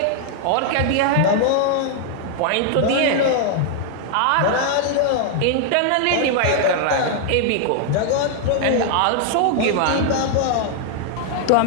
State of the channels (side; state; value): both; different; correlation 0.00